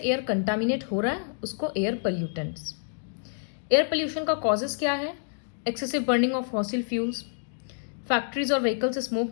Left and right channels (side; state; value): right; silent; digital silence